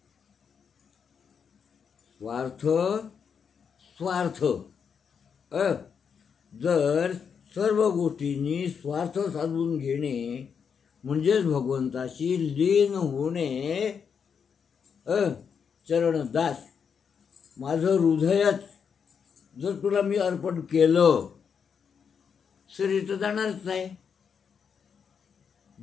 स्वार्थ जर सर्व गोष्टींनी स्वार्थ साधून घेणे म्हणजेच भगवंताशी लीन होणे. चरणदास माझं हृदयच जर तुला मी अर्पण केलं, शरीर तर जाणारच नाही.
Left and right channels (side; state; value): right; quieter; 6.7 dB